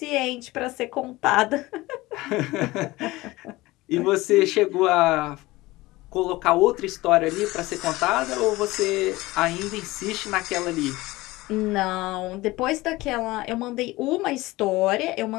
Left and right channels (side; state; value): right; quieter; 19.7 dB